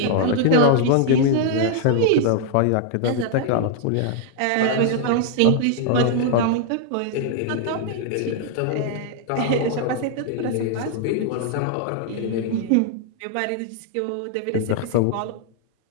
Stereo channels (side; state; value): both; different; correlation -0.01